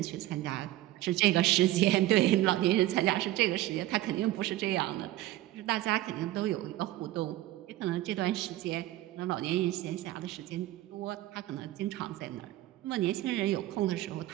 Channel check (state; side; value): quieter; left; 15.6 dB